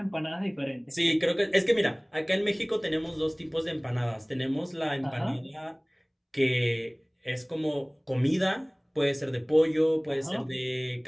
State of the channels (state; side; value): identical; both; correlation 1.00